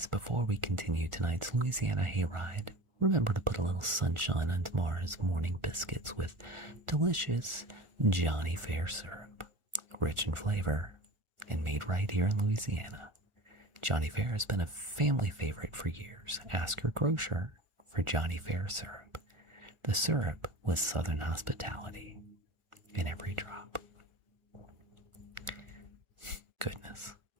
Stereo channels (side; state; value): left; late; 1.4 ms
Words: before we continue tonight's Louisiana hayride, remember to put a little sunshine on tomorrow's morning biscuits with delicious Johnny Fair syrup, rich in flavor and made right here in Louisiana. Johnny Fair has been a family favorite for years. Ask your grocer for Johnny Fair syrup. The syrup with Southern hospitality in every drop. Goodness.